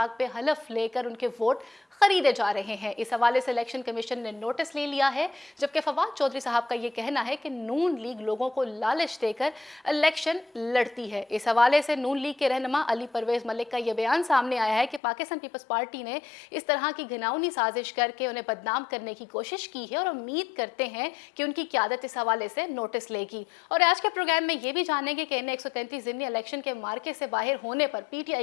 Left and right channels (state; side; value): drops out; right; at 15.0 s